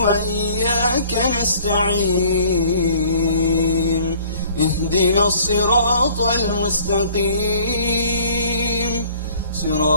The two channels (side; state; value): both; inverted; correlation -0.54